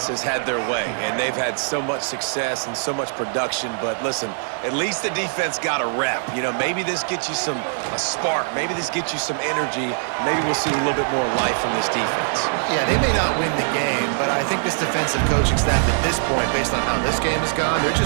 has had their way, and they've had so much success and so much production. But listen, at least the defense got a rep. Maybe this gets you a spark. Maybe this gets you some energy. Maybe we'll see a little bit more life from this defense. Yeah, they may not win the game, but I think this defensive coaching staff at this point, based on how this game has gone, they're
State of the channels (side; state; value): left; silent; 64 dB below the other